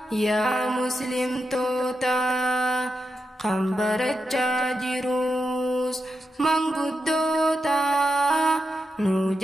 yaa muslimtoota kan barachaa jirus manguddoota nu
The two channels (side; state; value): both; normal; correlation 0.87